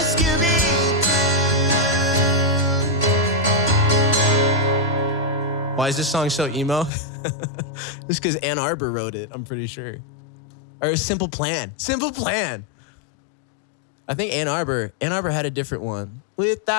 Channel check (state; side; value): drops out; right; at 6.9 s